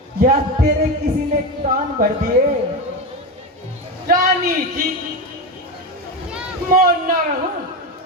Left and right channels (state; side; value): normal; both; correlation 0.17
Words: या तेरे किसी ने कान भर दिए? रानी जी, मौन न रहूं